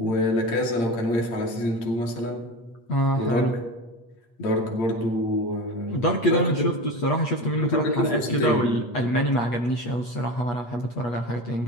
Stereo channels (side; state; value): right; late; 8.3 ms